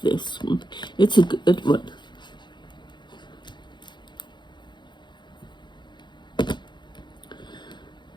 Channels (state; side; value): late; right; 0.22 ms